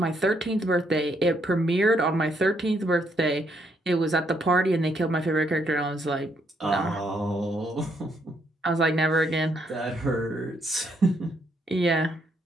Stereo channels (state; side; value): normal; both; correlation 0.73